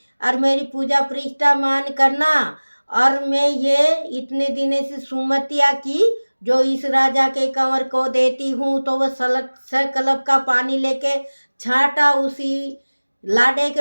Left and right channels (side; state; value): both; inverted; correlation -1.00